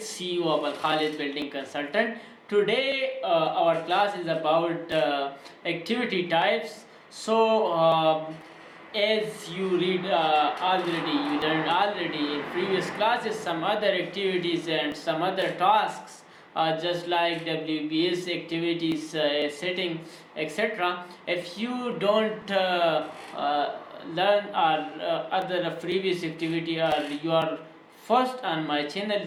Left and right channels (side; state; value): both; identical; correlation 1.00